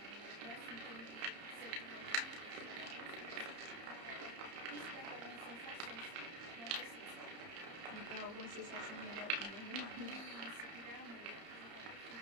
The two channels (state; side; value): late; left; 30 ms